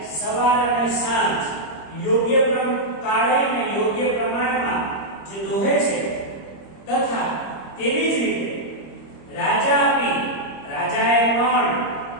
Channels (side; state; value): right; late; 25 ms